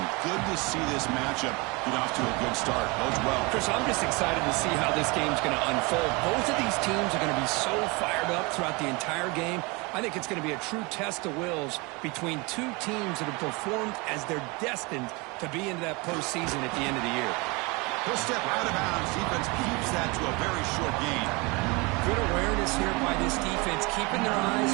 Good to see this matchup get off to a good start. Bodes well. Chris, I'm just excited to see how this game's going to unfold. Both of these teams are going to be so fired up throughout the entire game. I think it's going to be a true test of wills between two teams that have performed as they're destined to be into that postseason at the end of the year. He'll step out of bounds. Defense keeps that to a very short gain. Good awareness here by this defense, keeping their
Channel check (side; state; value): left; quieter; 27.0 dB